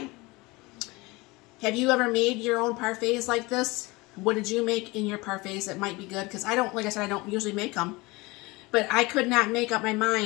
Have you ever made your own parfaits like this? What did you make in your parfaits that might be good? Because I don't, like I said, I don't usually make them. But I could not make up my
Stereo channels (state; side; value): quieter; right; 23.3 dB